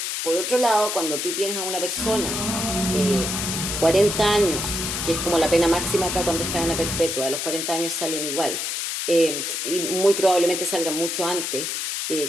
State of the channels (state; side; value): noise; left; hiss, 2 dB below the sound